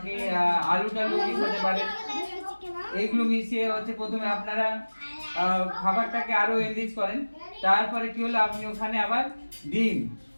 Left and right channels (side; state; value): both; inverted; correlation -1.00